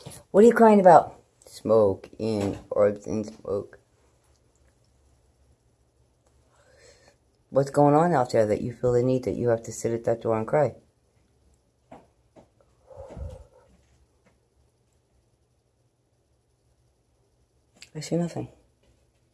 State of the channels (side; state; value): both; identical; correlation 1.00